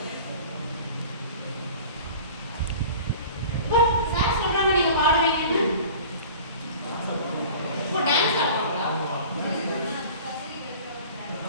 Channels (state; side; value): inverted; both; correlation -0.42